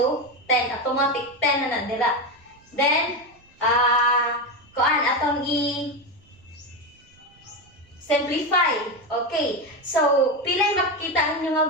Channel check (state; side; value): noise; right; rumble, 30 dB below the sound